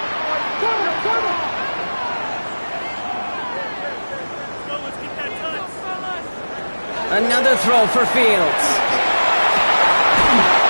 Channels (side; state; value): both; inverted; correlation -1.00